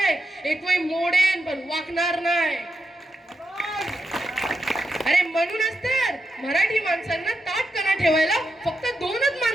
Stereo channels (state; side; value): normal; both; correlation 0.86